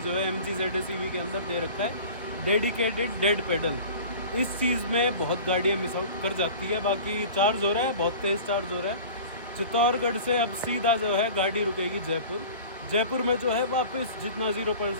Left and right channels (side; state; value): both; inverted; correlation -0.40